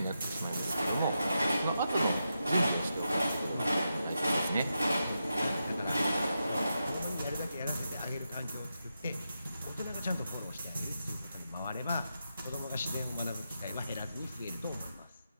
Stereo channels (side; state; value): both; inverted; correlation -0.87